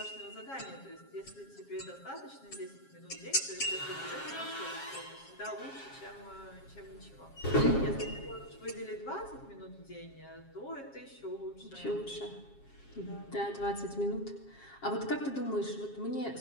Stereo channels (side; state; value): right; late; 7.4 ms